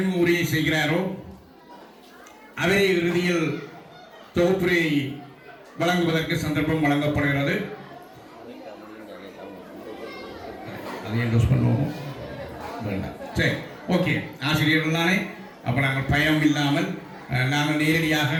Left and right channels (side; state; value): both; identical; correlation 1.00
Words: உரையை செய்கிறாரோ அவரை இறுதியில் தொகுப்புரை வழங்குவதற்கு சந்தர்ப்பம் வழங்கப்படுகிறது. அதை என்டோஸ் பண்ணுவோம். சரி, ஓகே. ஆசிரியர்கள் தானே, அப்போ நாங்கள் பயம் இல்லாமல் நாங்கள் நேரடியாக